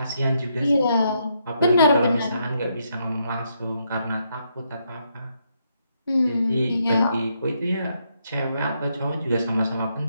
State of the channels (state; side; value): inverted; both; correlation -0.77